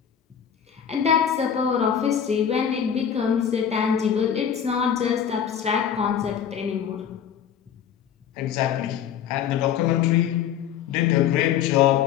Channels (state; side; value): quieter; right; 8.7 dB